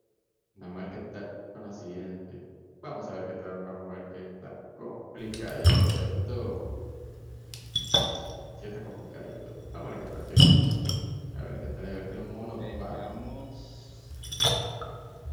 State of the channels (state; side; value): identical; both; correlation 1.00